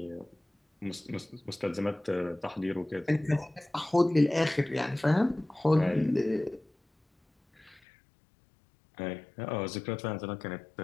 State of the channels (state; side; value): drops out; right; at 7.8 s